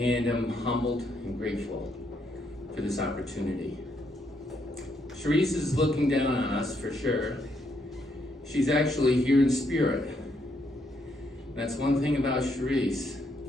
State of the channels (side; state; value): both; normal; correlation 0.75